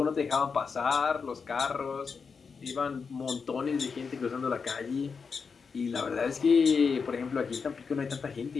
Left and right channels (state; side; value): quieter; right; 5.4 dB